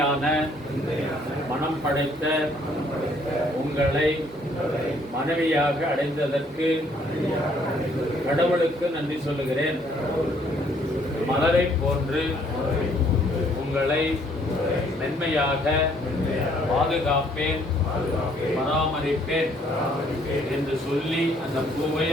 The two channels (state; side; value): normal; both; correlation 0.65